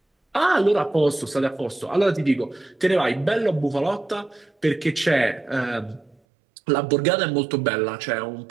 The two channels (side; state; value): left; drops out; at 6.2 s